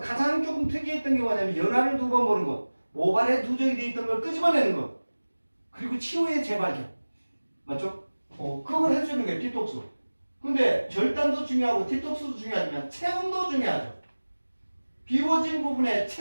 가장 조금 특이했던 게 뭐냐면 연화를 두 번 보는 것, 모발에 누적이 돼 있던 걸 끄집어내는 것, 그리고 치유의 재발견. 맞죠? 그걸 해주는 게 디톡스. 근데 절단도 중요하고 디톡스도 중요하지만 체온도 중요하죠. 비워진 부분에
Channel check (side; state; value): both; inverted; correlation -1.00